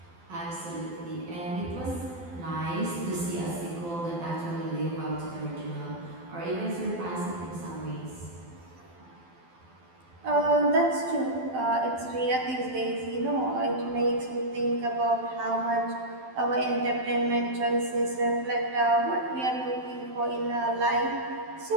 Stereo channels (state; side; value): late; left; 12 ms